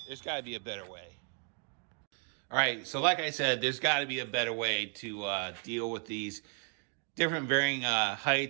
There's got to be a better way. All right, so like I said, there's got to be a better way to deal with these different varying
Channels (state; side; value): quieter; left; 39.8 dB